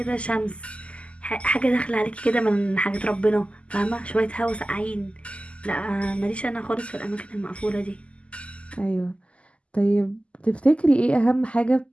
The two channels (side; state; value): right; late; 0.057 ms